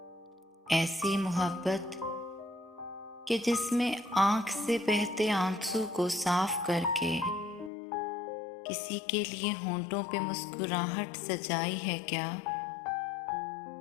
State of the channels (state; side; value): drops out; right; at 7.7 s